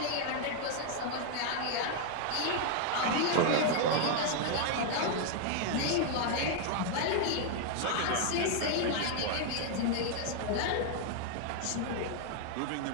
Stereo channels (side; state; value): both; different; correlation 0.00